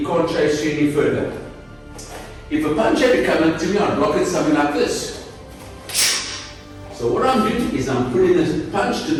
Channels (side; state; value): both; identical; correlation 1.00